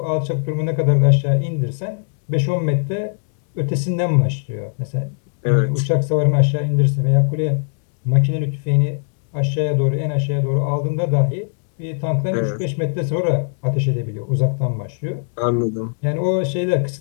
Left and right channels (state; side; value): silent; right; 66 dB below the other